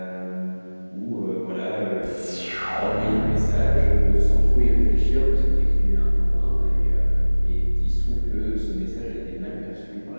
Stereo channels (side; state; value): both; inverted; correlation -1.00